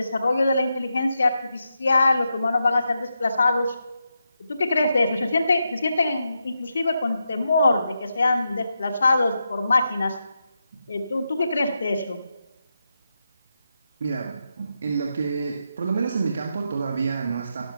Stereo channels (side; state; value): both; inverted; correlation -0.86